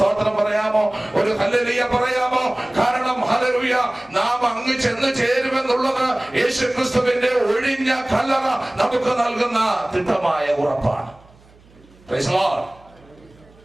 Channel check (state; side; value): noise; right; hum, 28 dB below the sound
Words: പറയാമോ? ഒരു ഹല്ലേലൂയ പറയാമോ? കാരണം ഹല്ലേലൂയ, നാം അങ്ങ് ചെന്ന് ചേരുമെന്നുള്ളത് യേശു ക്രിസ്തുവിന്റെ ഒഴിഞ്ഞ കല്ലറ നമുക്ക് നൽകുന്ന തിട്ടമായ ഉറപ്പാണ്. Price the Lord.